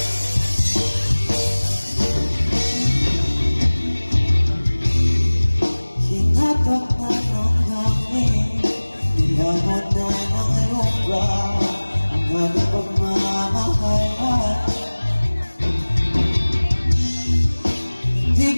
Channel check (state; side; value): inverted; both; correlation -1.00